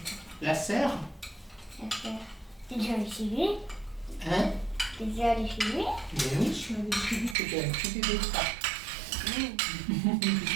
la serre? T'es déjà allé chez lui? Hein? T'es déjà allé chez lui? Mais oui, je suis allée chez lui. C'était un petit bébé de ça.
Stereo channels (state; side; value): drops out; left; at 7.4 s